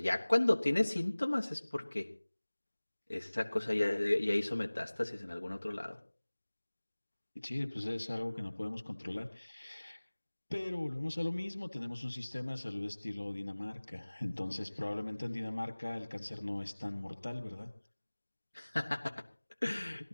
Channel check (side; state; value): both; inverted; correlation -1.00